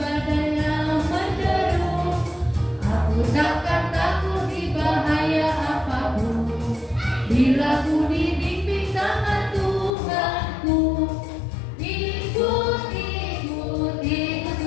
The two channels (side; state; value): right; drops out; at 9.9 s